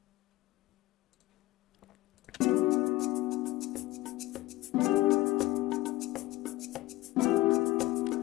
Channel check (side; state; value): right; quieter; 18.4 dB